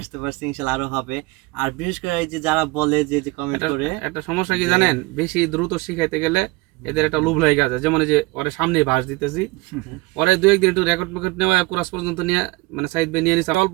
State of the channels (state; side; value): quieter; left; 23.1 dB